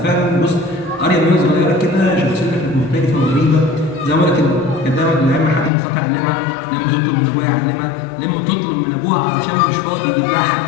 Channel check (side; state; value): right; drops out; at 5.7 s